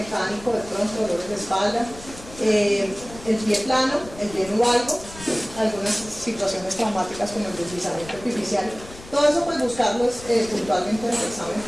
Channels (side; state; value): left; noise; rumble, 17 dB below the sound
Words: de pronto dolores de espalda, el pie plano, el pie nubalgo, algunas situaciones traumáticas como el deslizamiento artificial. Todo eso pues buscarlo puntualmente en el examen